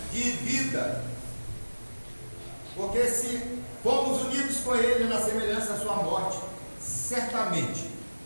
de vida. Porque se fomos unidos com ele na semelhança da sua morte, certamente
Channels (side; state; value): both; inverted; correlation -1.00